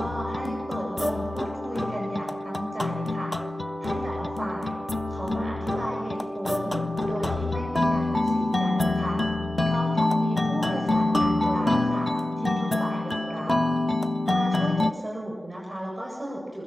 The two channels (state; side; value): normal; both; correlation 0.94